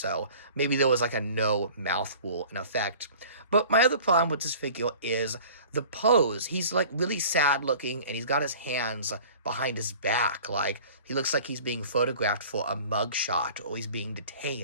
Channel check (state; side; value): inverted; both; correlation -0.45